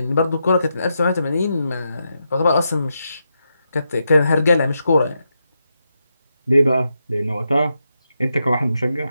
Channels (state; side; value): inverted; both; correlation -0.84